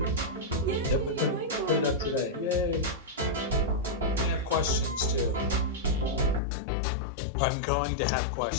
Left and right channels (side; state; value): right; drops out; at 6.4 s